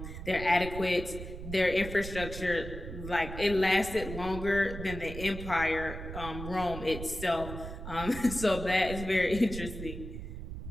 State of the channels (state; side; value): noise; right; rumble, 9 dB below the sound